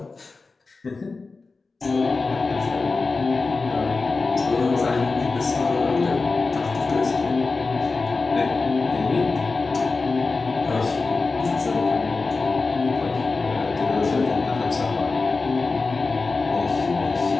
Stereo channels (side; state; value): right; quieter; 4.0 dB